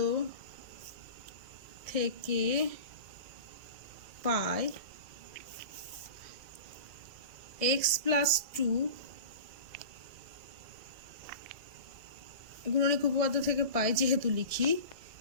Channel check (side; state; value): left; late; 1.6 ms